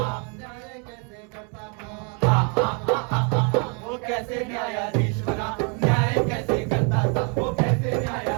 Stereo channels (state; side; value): quieter; left; 36.6 dB